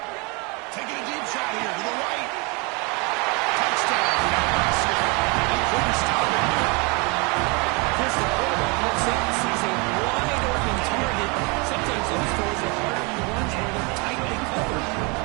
Taking a deep shot here to the right. Touchdown. He couldn't stop it there. Chris, the quarterback looks up and sees a wide open target. Sometimes those throws are harder than ones where they're tightly covered.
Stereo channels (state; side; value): quieter; left; 30.1 dB